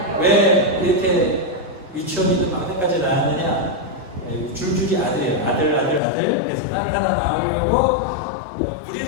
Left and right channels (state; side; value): drops out; right; at 6.0 s